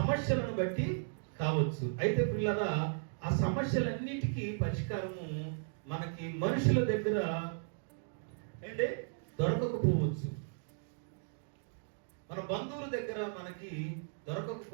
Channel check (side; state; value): left; silent; digital silence